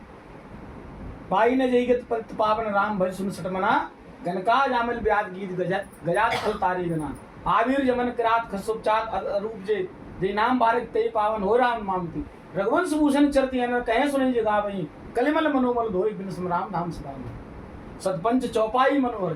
पाई ने जईगत पतित पावन, राम भज सुन सठ मना। गनका जामिल व्याध गीत गजात खल तारी गना। आवीर जमन किरात खसुपचात अरूप जे, जय नाम बारिक ते पावन हो राम मामती। रघुवंश भूषण चरती है, कहे सुने जगा वही, कलिमल मनोमल धोई, बिन सम राम धाम सदा। सतपंच चौपाई मनोहर,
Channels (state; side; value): identical; both; correlation 1.00